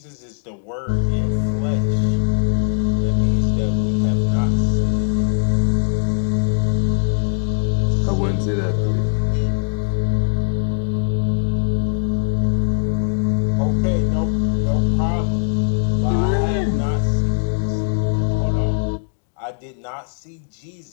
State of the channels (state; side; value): silent; right; digital silence